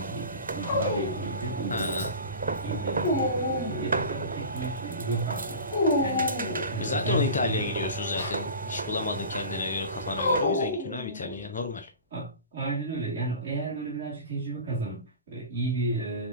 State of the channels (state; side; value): inverted; both; correlation -0.35